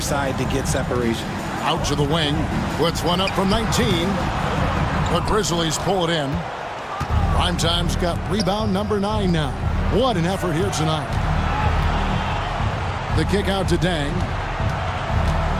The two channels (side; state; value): both; identical; correlation 1.00